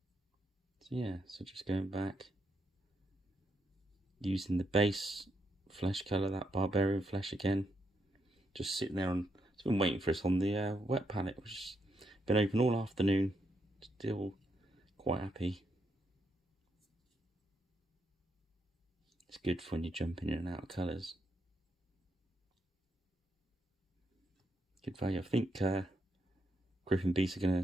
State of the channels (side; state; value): both; normal; correlation 0.80